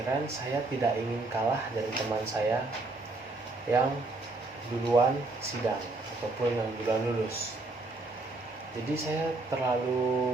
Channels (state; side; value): quieter; left; 3.2 dB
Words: saya tidak ingin kalah dari teman saya yang duluan sidang ataupun yang duluan lulus. Jadi saya